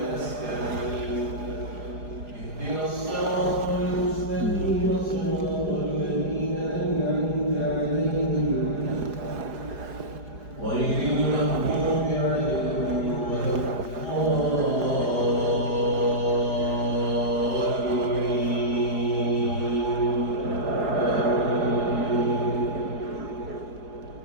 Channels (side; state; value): left; late; 4.9 ms